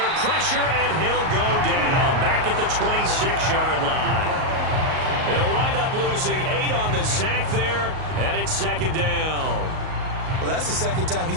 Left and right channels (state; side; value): late; left; 38 ms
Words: pressure, and he'll go down back at the 26-yard line. They'll wind up losing 8 on the sack there, and it's 2nd down. Well, that's the 2nd time